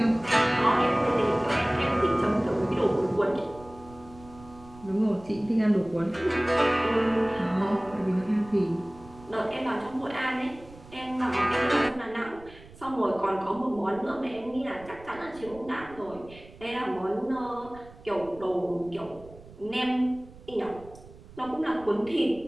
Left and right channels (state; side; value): noise; right; rumble, 20 dB below the sound